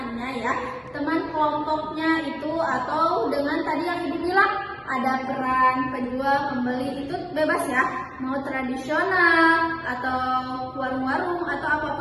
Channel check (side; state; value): both; identical; correlation 1.00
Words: ya, teman kelompoknya itu, atau dengan tadi yang Ibu bilang ada peran penjual, pembeli, itu bebas ya, mau tradisional atau warung-warung atau